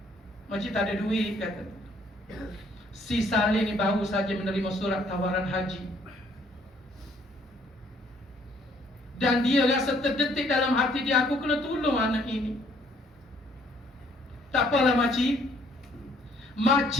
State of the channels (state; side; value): normal; both; correlation 0.64